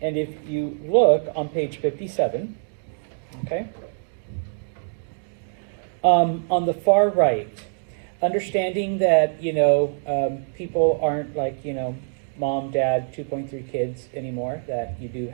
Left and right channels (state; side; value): silent; left; digital silence